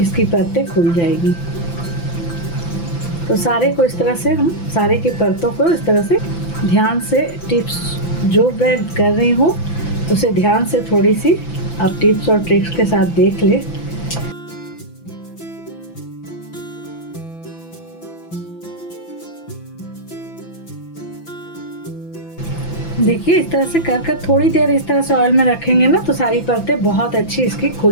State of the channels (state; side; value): late; right; 5.9 ms